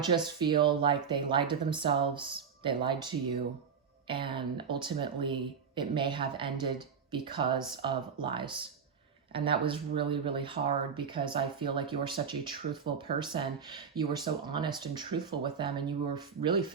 feel like they lied to themselves. They lied to you. And ultimately, it may have ended because of lies. And that was really, really hard, because I feel like you were such a truthful person. You were so honest and truthful with them, and you were really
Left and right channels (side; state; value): left; quieter; 6.5 dB